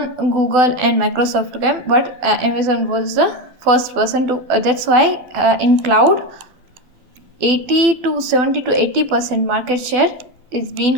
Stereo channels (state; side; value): late; left; 12 ms